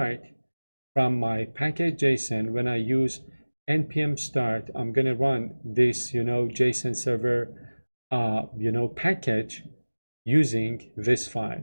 from my package.json, when I use npm start, I'm going to run this, JSON server, package using this file.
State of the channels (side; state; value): both; inverted; correlation -1.00